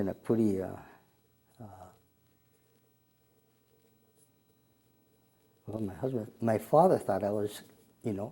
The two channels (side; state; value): both; identical; correlation 1.00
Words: a pretty, my father thought I was,